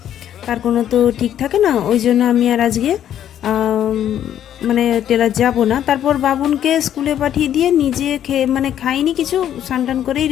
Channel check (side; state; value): right; quieter; 10.6 dB